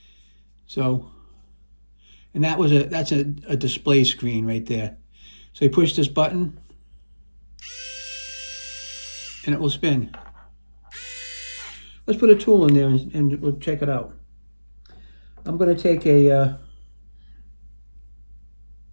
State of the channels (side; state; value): both; inverted; correlation -1.00